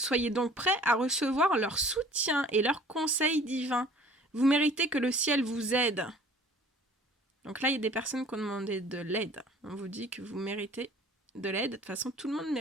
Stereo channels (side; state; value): both; normal; correlation 0.50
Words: donc prêts à recevoir leur soutien et leurs conseils divins. Vous méritez que le ciel vous aide. Donc là, il y a des personnes qui ont demandé de l'aide. On vous dit que vous méritez de l'aide. De toute façon, tout le monde